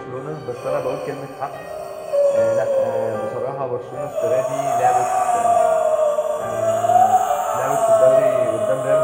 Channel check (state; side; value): identical; both; correlation 1.00